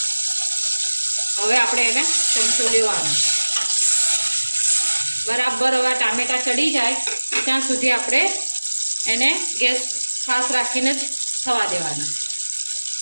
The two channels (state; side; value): inverted; both; correlation -1.00